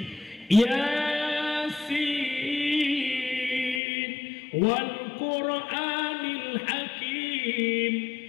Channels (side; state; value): right; drops out; at 3.8 s